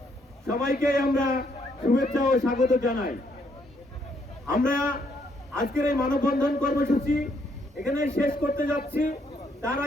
সবাইকে আমরা শুভেচ্ছা ও স্বাগত জানাই। আমরা আজকের এই মানববন্ধন কর্মসূচি এখানে শেষ করতে যাচ্ছি। তার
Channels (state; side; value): normal; both; correlation 0.71